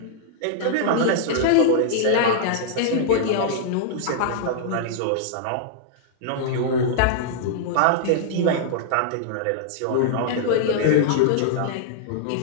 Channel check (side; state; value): both; different; correlation -0.01